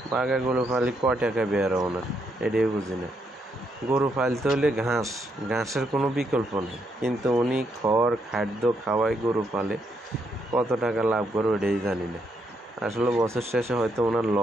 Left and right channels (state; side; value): normal; both; correlation 0.77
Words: গরু পালি, ক টাকা বের ওনার, এটাই বুঝি না। গরু পালতে হলে ঘাসের কোনো বিকল্প নেই, কিন্তু উনি খাদ্য খাওয়ায় গরু পালে, কত টাকা লাভ করে ওটাই জানি না। আসলে বছর শেষে হয়তো ওনার